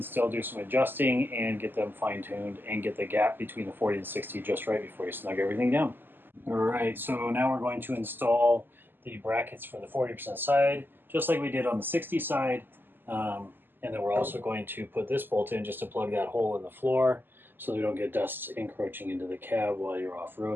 still do some adjusting and get them fine-tuned and get the gap between the 40 and 60 just right before you snug everything down. All right, so now we're going to install the brackets for the 40% side, just like we did on the 60 side. And then we're also going to put this bolt in just to plug that hole in the floor so we don't get dust encroaching into the cab while you're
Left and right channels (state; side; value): late; left; 0.094 ms